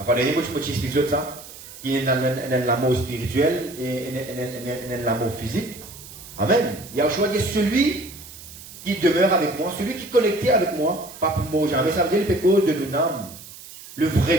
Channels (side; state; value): right; noise; hiss, 16 dB below the sound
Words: il y a beaucoup de choses qui ça, qui est dans l'amour spirituel et dans l'amour physique. Amen. Yahushua dit celui qui demeure avec moi, celui qui est connecté avec moi, pas pour mourir jamais. Ça veut dire le péché de nous-mêmes, le